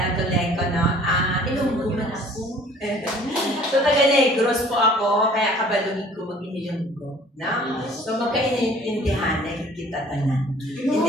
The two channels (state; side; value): normal; both; correlation 0.52